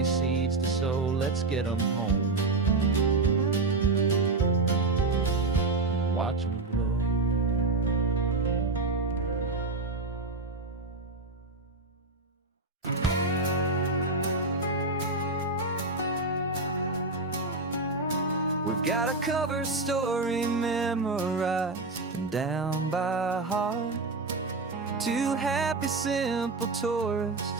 seeds to sow. Let's get them home, watch them grow. We've got a cover story memorized and down by heart. Two happy, simple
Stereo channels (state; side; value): quieter; left; 3.5 dB